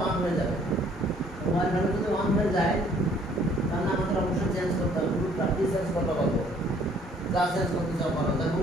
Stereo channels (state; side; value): normal; both; correlation 0.60